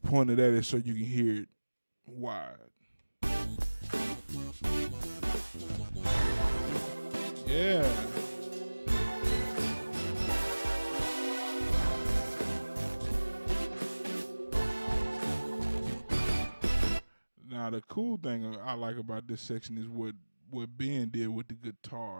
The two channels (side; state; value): both; inverted; correlation -1.00